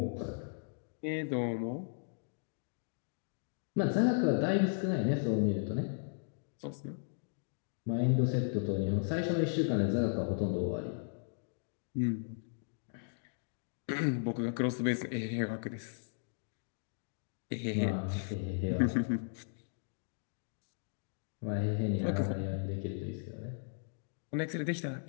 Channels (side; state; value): right; silent; digital silence